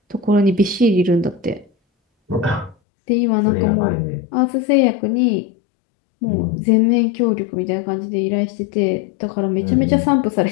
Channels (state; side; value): drops out; right; at 2.8 s